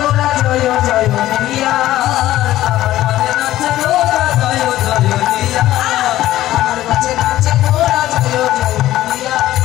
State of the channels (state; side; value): quieter; right; 14.6 dB